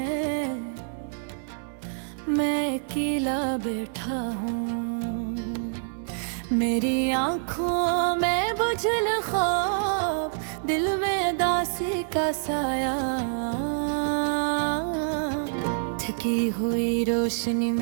मैं अकेला बैठा हूँ। मेरी आँखों में बुझल ख्वाब, दिल में दासी का साया। थकी हुई रोशनी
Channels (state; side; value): silent; left; 60 dB below the other